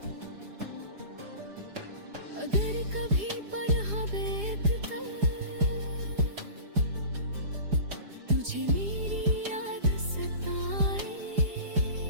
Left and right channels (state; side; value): late; left; 4.9 ms